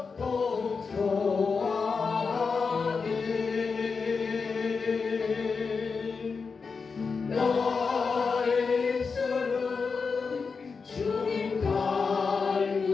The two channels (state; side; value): quieter; right; 5.0 dB